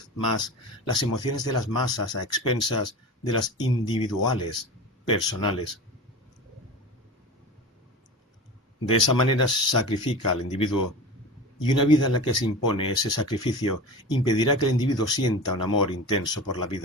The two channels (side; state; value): both; normal; correlation 0.31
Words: más las emociones de las masas a expensas de las individuales, personales. De esa manera se sacrifica al individuo, y una vida en la que se impone ese sacrificio impedirá que el individuo sienta un amor intenso por la